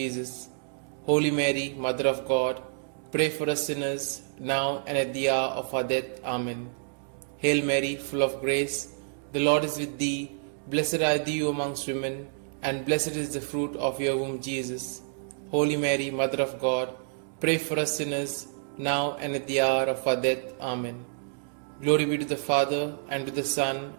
Holy Mary, Mother of God, pray for us sinners, now and at the hour of our death. Amen. Hail Mary, full of grace, the Lord is with thee. Blessed are you amongst women, and blessed is the fruit of your womb, Jesus. Holy Mary, Mother of God, pray for us sinners, now and at the hour of our death. Amen. Glory be to the Father, and to the Son,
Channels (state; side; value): silent; left; digital silence